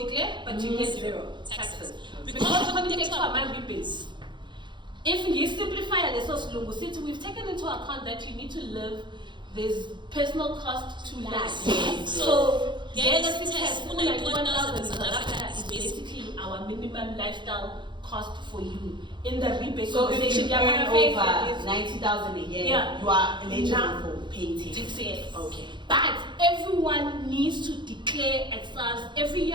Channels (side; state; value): left; late; 0.23 ms